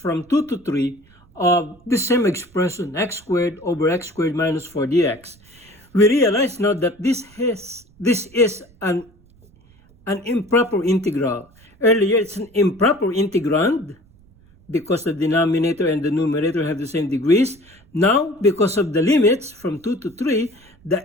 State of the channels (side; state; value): right; noise; rumble, 28 dB below the sound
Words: 2 to 3 of the same expression, x squared over x squared minus 4 dx, we realize now that this is an improper integral. Earlier, it's an improper integrand because the denominator and the numerator have the same degrees. Now, because of the limits from 2 to 3,